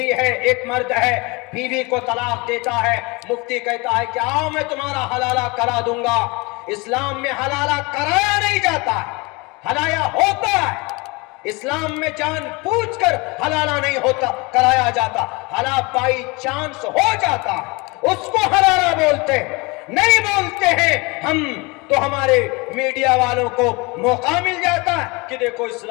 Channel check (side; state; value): right; quieter; 26.5 dB